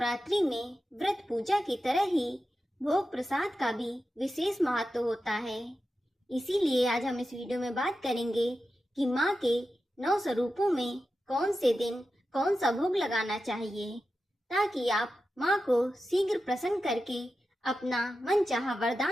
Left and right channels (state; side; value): normal; both; correlation 0.91